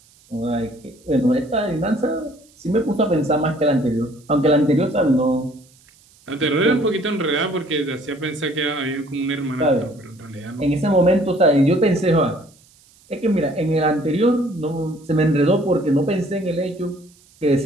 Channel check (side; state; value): right; noise; hiss, 29 dB below the sound